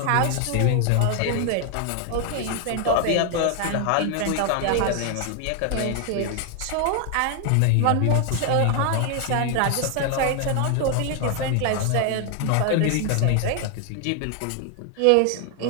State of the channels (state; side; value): different; both; correlation 0.00